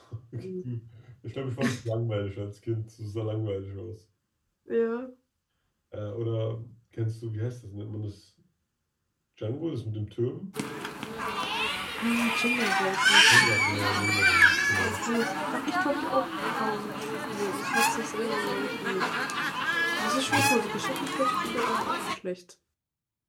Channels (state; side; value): identical; both; correlation 1.00